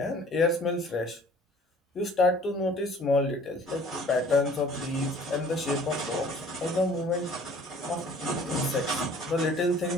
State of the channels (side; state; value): both; normal; correlation 0.51